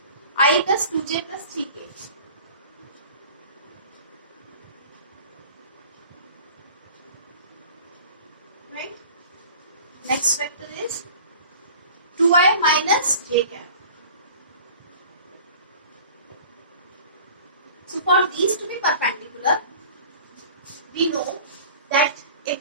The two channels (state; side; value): inverted; both; correlation -0.43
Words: I plus 2j plus 3k. Right? Next vector is 2i minus j cap. So for these to be perpendicular, we know that if